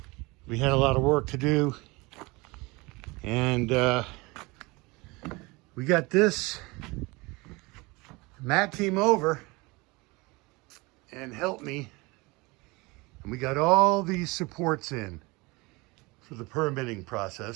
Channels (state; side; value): quieter; left; 24.7 dB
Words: We had a lot of work to do, and we got this Matt team over and helped me, and we got all these supports in for the permitting